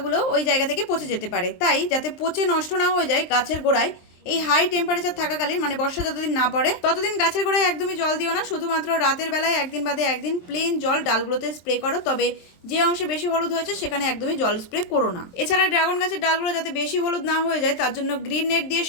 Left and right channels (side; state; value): right; late; 23 ms